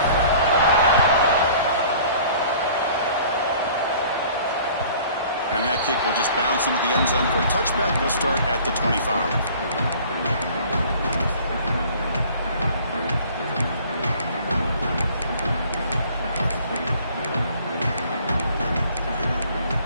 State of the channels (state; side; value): inverted; both; correlation -0.51